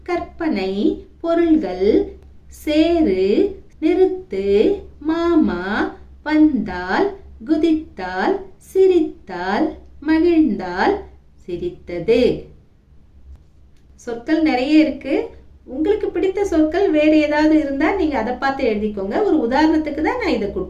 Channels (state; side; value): identical; both; correlation 1.00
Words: கற்பனை, பொருள்கள், சேரு, நிறுத்து, மாமா, வந்தால், குதித்தால், சிரித்தால், மகிழ்ந்தால், சிரித்தது. சொற்கள் நிறைய இருக்கு. உங்களுக்கு பிடித்த சொற்கள் வேறு ஏதாவது இருந்தா நீங்க அதை பார்த்து எழுதிக்கோங்க. ஒரு உதாரணத்துக்கு தான் நான் இதை